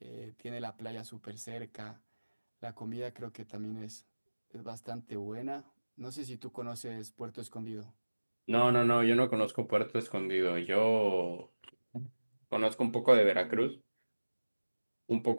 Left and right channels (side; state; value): both; inverted; correlation -1.00